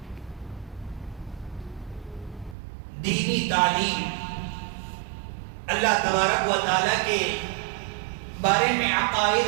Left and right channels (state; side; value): drops out; left; at 2.6 s